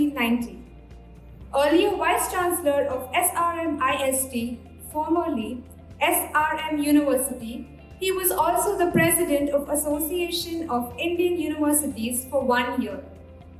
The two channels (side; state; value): both; identical; correlation 1.00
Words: Earlier Vice-Chancellor of SRM-IST, formerly SRM University, he was also the President of Association of Indian Universities for 1 year.